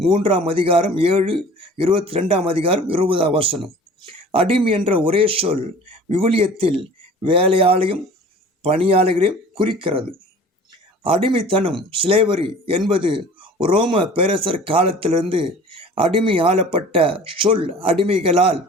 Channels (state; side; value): normal; both; correlation 0.44